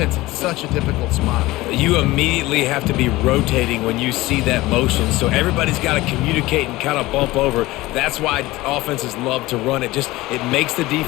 in such a difficult spot. You immediately have to be rotating when you see that motion, so everybody's got to communicate and kind of bump over. That's why offenses love to run it. It makes the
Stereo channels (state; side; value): quieter; right; 19.0 dB